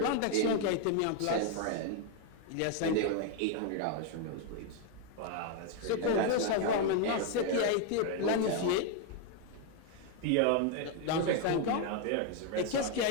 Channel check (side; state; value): both; different; correlation 0.01